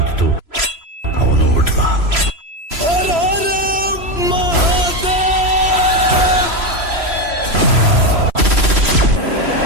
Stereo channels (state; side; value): late; left; 3.0 ms